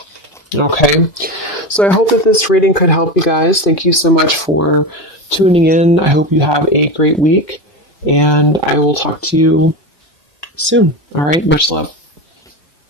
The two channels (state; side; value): late; right; 2.5 ms